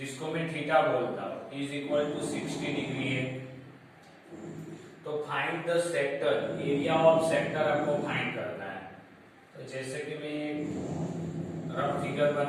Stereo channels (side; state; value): both; identical; correlation 1.00